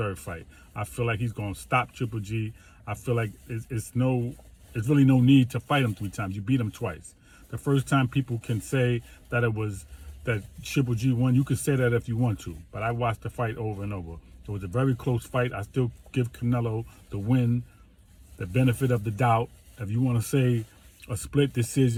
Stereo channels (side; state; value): both; identical; correlation 1.00